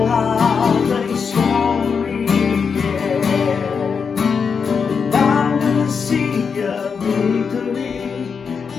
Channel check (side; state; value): right; quieter; 5.9 dB